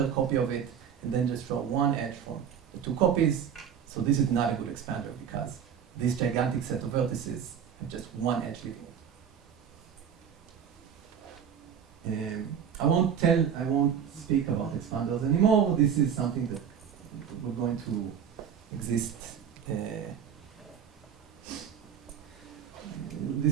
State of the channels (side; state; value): left; quieter; 8.1 dB